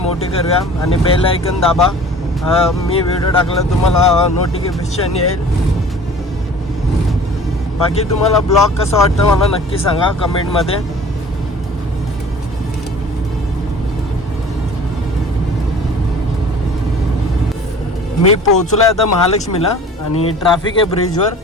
करूया आणि बेल आयकन दाबा. मी व्हिडिओ टाकला तुम्हाला नोटिफिकेशन येईल. बाकी तुम्हाला ब्लॉग कसा वाटतं मला नक्की सांगा कमेंटमध्ये. मी पोहोचलो आहे आता महालक्ष्मीला आणि ट्रॅफिक आहे ब्रिजवर.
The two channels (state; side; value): normal; both; correlation 0.45